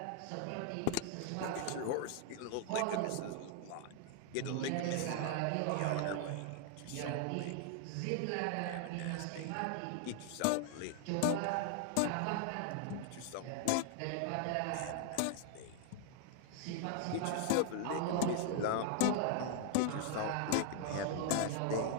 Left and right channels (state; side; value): different; both; correlation 0.00